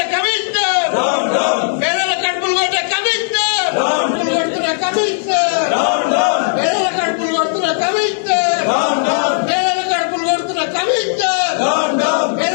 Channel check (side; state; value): right; silent; digital silence